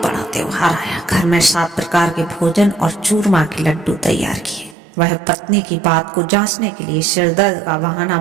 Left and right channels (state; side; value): drops out; left; at 4.8 s